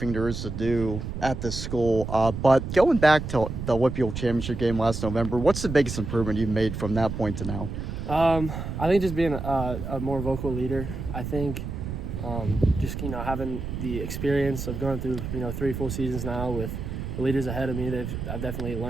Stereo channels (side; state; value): right; noise; rumble, 6 dB below the sound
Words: there is to do at this school. But going back to the Whitfield Championship game last November, what's the biggest improvement you've made from that point to now? I think just being a more vocal leader. I think just having the experience of going through 3 full seasons now with the leaders ahead of me. I've definitely